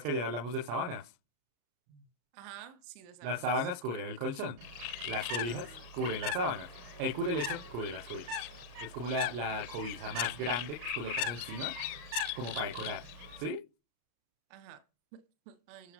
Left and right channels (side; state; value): left; late; 34 ms